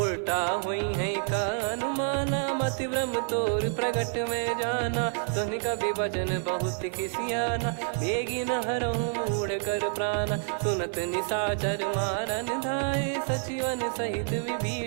उल्टा हुई है का अनुमाना मति भ्रम तोर प्रगट में जाना सुन कवि वचन बहुत खिसियाना बेगी न हरहु मूढ़ कर प्राण सुनत निशाचर मारन धाये सचिवन सहित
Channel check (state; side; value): silent; left; 59 dB below the other